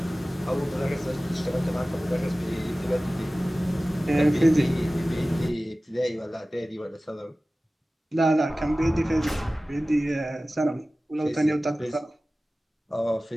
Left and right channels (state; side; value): normal; both; correlation 0.97